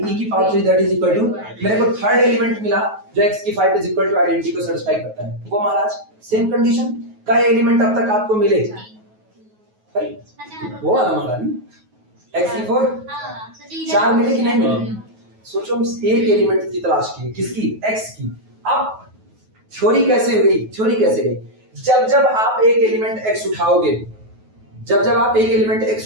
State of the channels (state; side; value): late; left; 9.3 ms